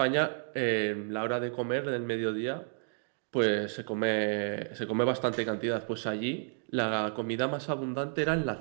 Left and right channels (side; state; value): left; silent; digital silence